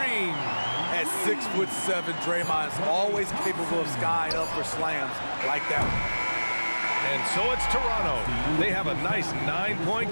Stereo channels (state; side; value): inverted; both; correlation -1.00